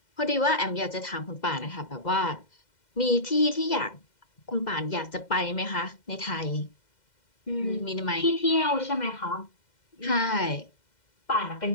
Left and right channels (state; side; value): late; right; 2.1 ms